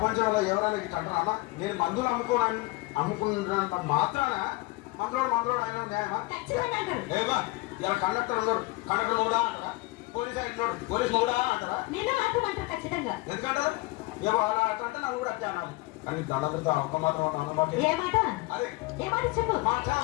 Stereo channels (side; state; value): right; quieter; 22.1 dB